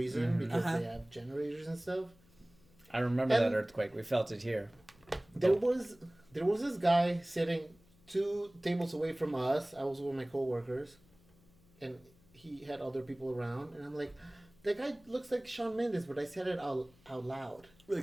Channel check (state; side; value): noise; left; hum, 29 dB below the sound